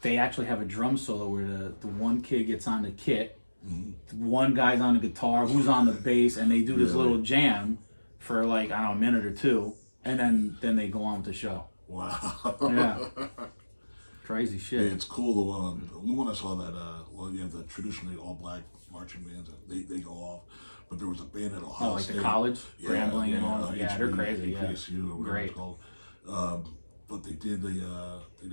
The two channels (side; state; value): both; inverted; correlation -1.00